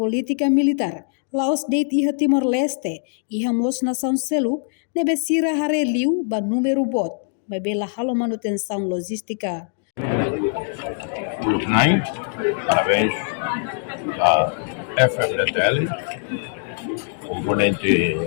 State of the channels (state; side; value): silent; right; digital silence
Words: militar. Laos deit iha Timor-Leste, iha mos nação seluk, nebe sira hare liu ba número bot. Bebela halo manutenção logística. Parabéns à FMDTL, componente